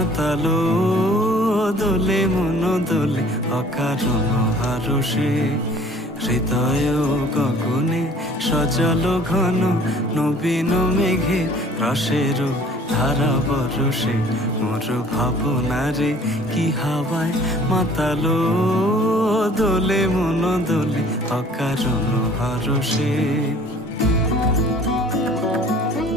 দোলে মন দোলে অকারণ হারসে হৃদয় গগনে সজল ঘন নবীন মেঘের রসের ধারা বরসে মোর ভাবনা রে কি হাওয়ায় মাতালো দোলে মন দোলে অকারণ হারসে।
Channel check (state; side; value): normal; both; correlation 0.52